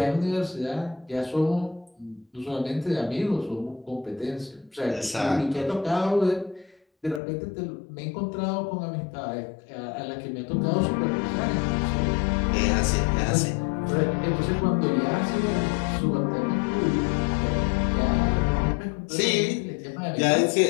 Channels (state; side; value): drops out; right; at 7.2 s